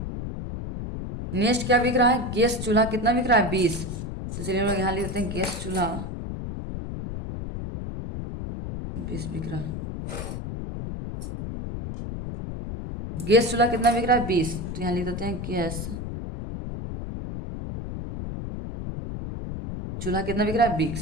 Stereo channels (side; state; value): left; noise; rumble, 6 dB below the sound